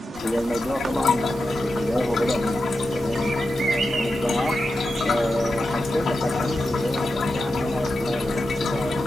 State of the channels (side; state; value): both; normal; correlation 0.90